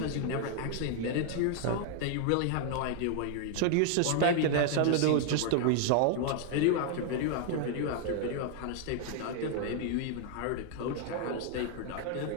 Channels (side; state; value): both; different; correlation 0.00